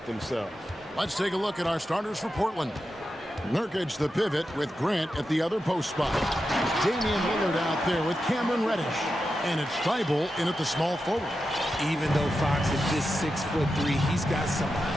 themselves. Let's take a look at our starters for Portland. Nurkic, the pivot, with Grant at the other post spot. Damian Lillard out there with Cameron Reddish. And it's Thibault in at the small forward. Even though Fox is just 6'3", he's got some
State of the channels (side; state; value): both; normal; correlation 0.89